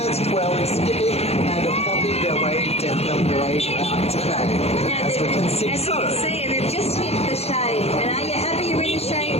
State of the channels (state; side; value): late; right; 0.30 ms